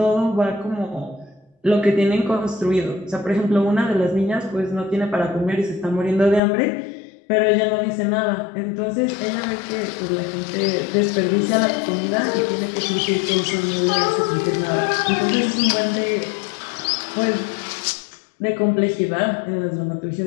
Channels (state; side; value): drops out; right; at 6.4 s